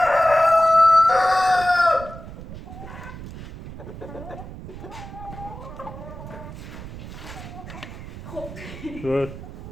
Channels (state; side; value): noise; right; rumble, 12 dB below the sound